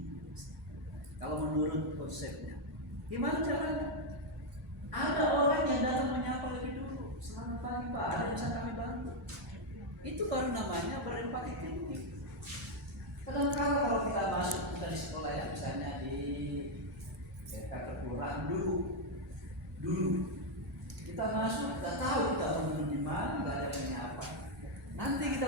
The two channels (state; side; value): normal; both; correlation 0.00